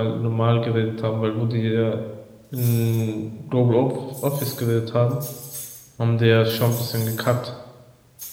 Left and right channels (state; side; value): identical; both; correlation 1.00